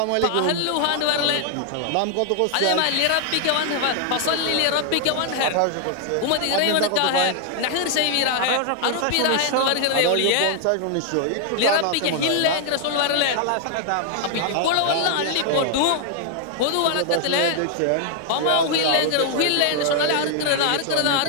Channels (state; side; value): different; both; correlation 0.00